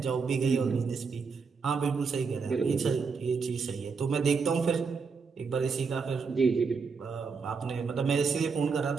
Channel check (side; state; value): left; quieter; 5.2 dB